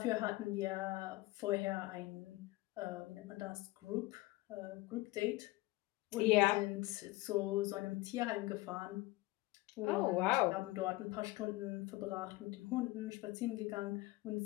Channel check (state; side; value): quieter; right; 19.8 dB